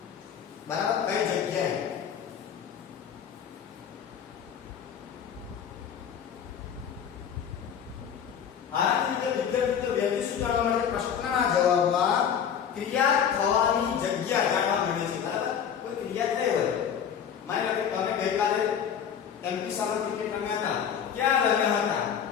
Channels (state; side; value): quieter; right; 8.1 dB